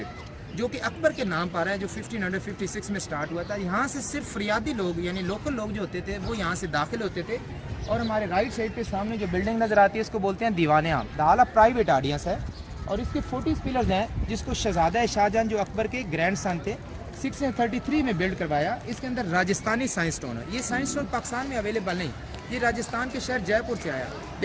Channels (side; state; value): both; identical; correlation 1.00